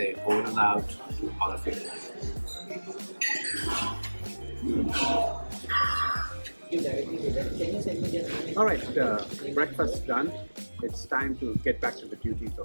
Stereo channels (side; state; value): both; inverted; correlation -1.00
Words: over and out to all of you. Alright, breakfast done. It's time to get back to the duties